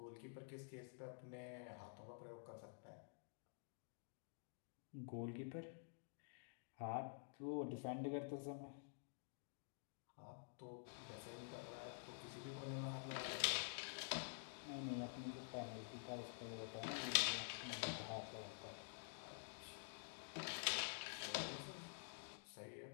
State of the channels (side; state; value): right; silent; digital silence